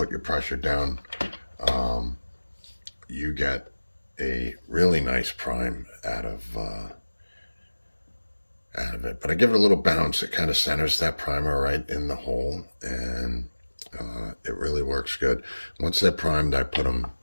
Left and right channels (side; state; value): both; inverted; correlation -1.00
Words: your pressure down, you get a really nice prime out of it. But I give it a little bounce. It kind of centers that primer right in the hole, and it really works good. Once they're primed, I put them